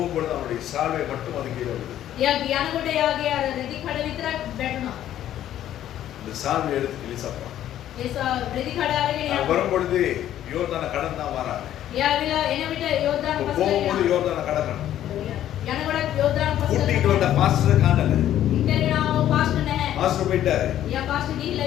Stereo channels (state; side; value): quieter; right; 11.8 dB